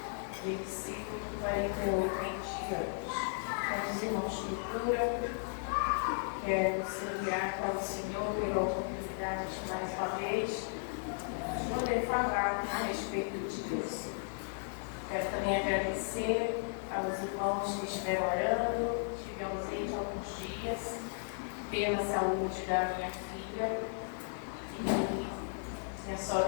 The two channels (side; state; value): right; silent; 54 dB below the other